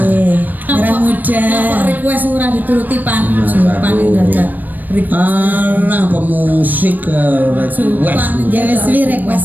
Merah muda. Kok request ora dituruti pan Pan dadak. Alah pemusik request. Ya wis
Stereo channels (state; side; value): late; left; 0.087 ms